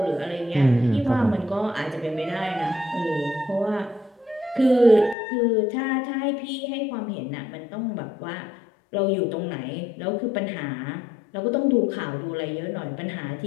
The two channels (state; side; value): drops out; right; at 5.2 s